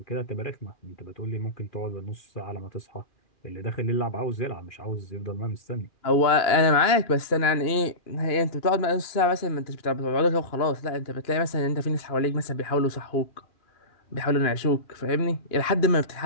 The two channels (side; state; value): right; late; 2.9 ms